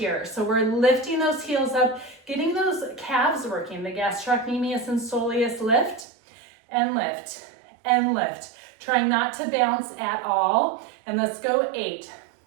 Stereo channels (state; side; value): drops out; left; at 6.1 s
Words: So we're lifting those heels up, getting those calves working, the gastrocnemius and soleus. Lift and lift and lift. Trying not to bounce at all. And let's go 8